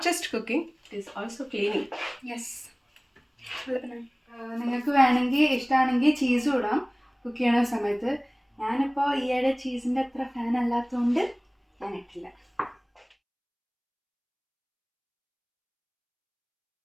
just cooking, it is also cleaning. Yes. നിങ്ങൾക്ക് വേണമെങ്കിൽ ഇഷ്ടമാണെങ്കിൽ ചീസും ഇടാം കുക്ക് ചെയ്യണ സമയത്ത്. ഞാനിപ്പോൾ ഈയിടെ ചീസിൻ്റെ അത്ര ഫാൻ അല്ലാത്തതുകൊണ്ട് ഞാൻ ഇട്ടില്ല.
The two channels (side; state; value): both; identical; correlation 1.00